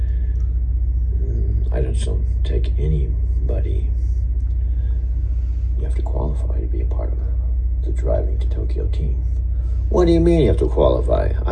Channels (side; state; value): both; identical; correlation 1.00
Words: I just don't take anybody. You have to qualify to be a part of the Driving to Tokyo team. What do you mean you have to qualify?